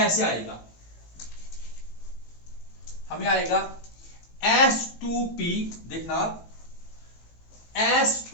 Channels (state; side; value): late; right; 18 ms